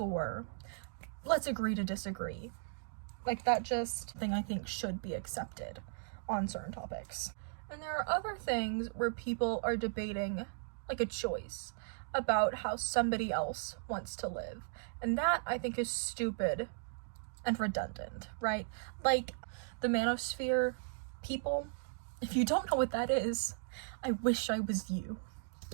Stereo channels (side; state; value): left; silent; digital silence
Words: let's agree to disagree. Like, that just thing I think should be accepted on certain topics. And there are other things where people are debating, like, a choice about how somebody else wants to live. And that, I think, is stupid and redundant, right? Like, the manosphere people, if you don't know what that is, I wish I was you.